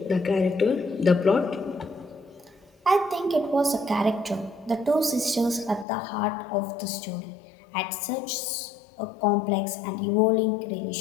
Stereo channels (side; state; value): right; drops out; at 5.9 s